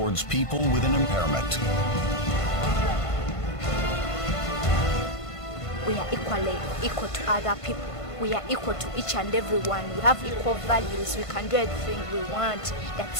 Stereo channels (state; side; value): late; right; 1.5 ms